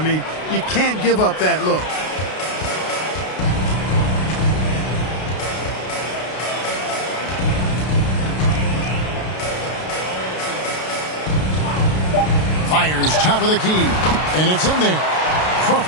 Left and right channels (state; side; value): late; right; 32 ms